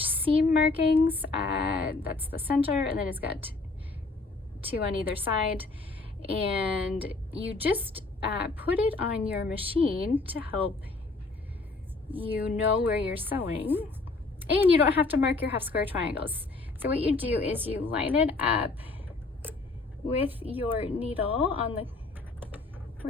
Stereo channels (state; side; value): quieter; right; 3.6 dB